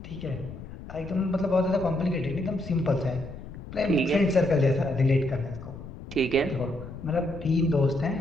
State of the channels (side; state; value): left; noise; rumble, 12 dB below the sound